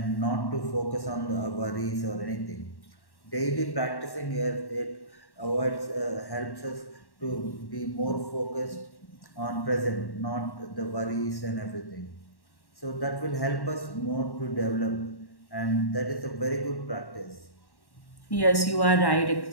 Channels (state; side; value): late; right; 1.1 ms